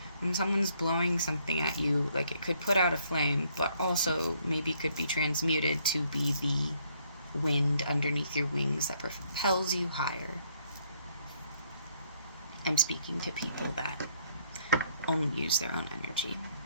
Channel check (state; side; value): inverted; both; correlation -0.69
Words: when someone's blowing something at you, like it could put out a flame, but also maybe could be transmuted to be the wind underneath your wings that propels you higher. I'm speaking to people that only use their own energy.